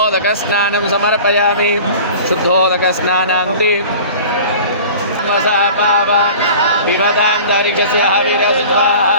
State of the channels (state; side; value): inverted; both; correlation -0.41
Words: समर्पयामि शुद्धोदकस्नानान्ते विवदान्तरिक्षस्य हविरस्वा